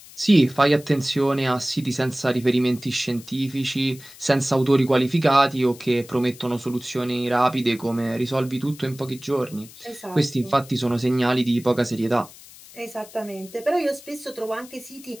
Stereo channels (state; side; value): noise; left; hiss, 20 dB below the sound